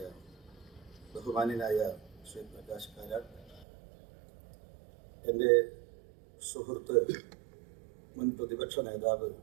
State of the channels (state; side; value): drops out; left; at 3.7 s